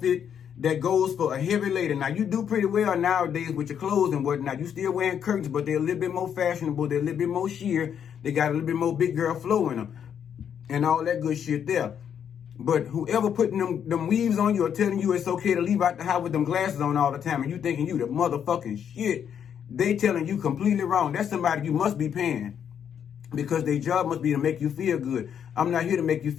that goes for a heavy lady. Now, you do pretty well nowadays with your clothes and whatnot. You still wearing curtains, but they're a little bit more fashionable. They're a little bit more sheer. They got a little bit more big girl flow in them and all that good shit there. But whoever putting them weaves on you or telling you it's okay to leave out the house with them glasses on all the time and you thinking you the motherfucking shit, they telling you completely wrong. That's somebody you must be paying because their job must be to make you feel good. I'm not here to make you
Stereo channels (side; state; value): right; quieter; 8.4 dB